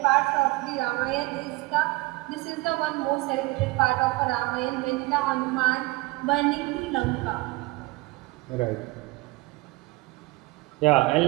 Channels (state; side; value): quieter; left; 21.9 dB